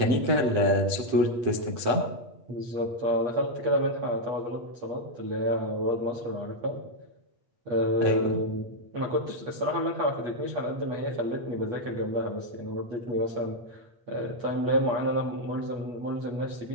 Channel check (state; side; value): late; left; 8.5 ms